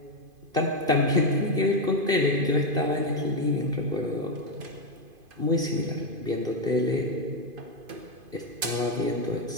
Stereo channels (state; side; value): late; left; 2.5 ms